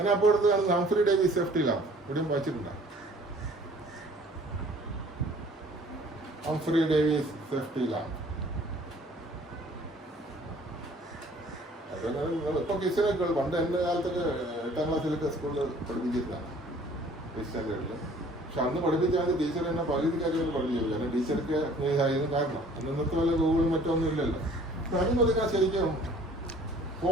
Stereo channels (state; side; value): normal; both; correlation 0.53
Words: ഹംഫ്രി ഡേവിസ് സേഫ്റ്റി ലാമ്പ്, ഇവിടെയും വായിച്ചിട്ടുണ്ട്. ഹംഫ്രി ഡേവിസ് സേഫ്റ്റി ലാമ്പ് ഇപ്പൊ കിച്ചനൊക്കെ പണ്ട് എൻ്റെ കാലത്തൊക്കെ 8ാം ക്ലാസ്സിലൊക്കെ സ്കൂളിൽ പഠിപ്പിച്ചിരുന്നതാണ് സ്റ്റാൻഡേർഡിൽ. പക്ഷെ അന്ന് പഠിപ്പിച്ചാൽ ടീച്ചർ എന്നെ പകുതി കാര്യങ്ങൾ പഠിപ്പിച്ചു. കാരണം ടീച്ചർക്ക് ആയിരുന്നു കാരണം അന്നത്തെ പോലെ ഗൂഗിളും മറ്റൊന്നും ഇല്ലല്ലോ. അതിന് പതുക്കെ ശരിക്കും